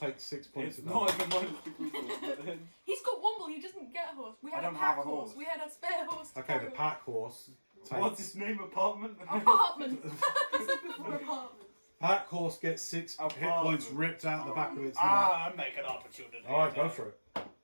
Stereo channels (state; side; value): inverted; both; correlation -1.00